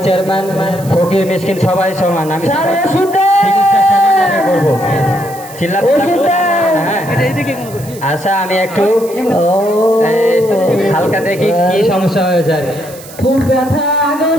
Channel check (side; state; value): right; noise; hiss, 18 dB below the sound